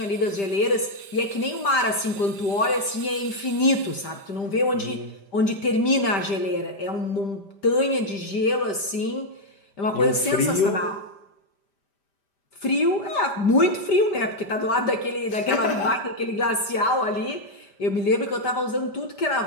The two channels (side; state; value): right; late; 5.1 ms